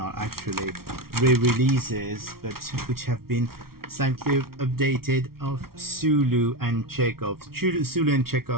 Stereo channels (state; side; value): late; left; 0.94 ms